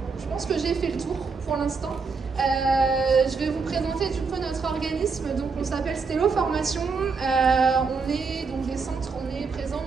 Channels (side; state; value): left; quieter; 4.8 dB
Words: Je pense que j'ai fait le tour pour l'instant. Je vais vous présenter du coup notre organisme. Donc on s'appelle Stello Formation. On est donc des centres, on est présent